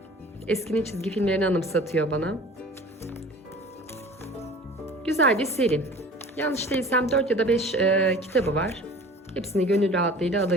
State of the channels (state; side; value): normal; both; correlation 0.44